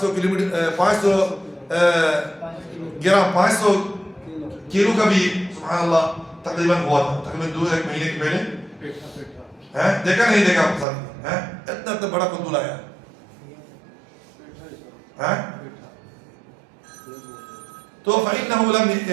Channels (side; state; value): left; drops out; at 10.9 s